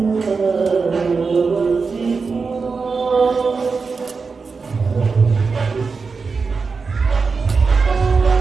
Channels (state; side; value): quieter; left; 4.8 dB